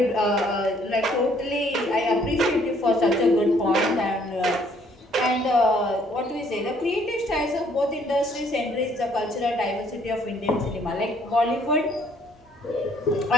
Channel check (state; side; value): normal; both; correlation 0.64